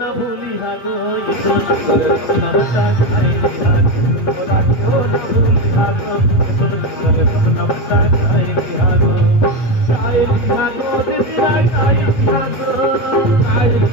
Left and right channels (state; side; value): late; right; 8.4 ms